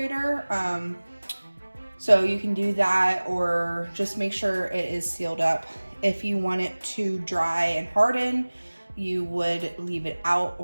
So you can do that, or just make sure it is sealed up. If you want it to dry and harden, you would leave it out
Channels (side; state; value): both; inverted; correlation -1.00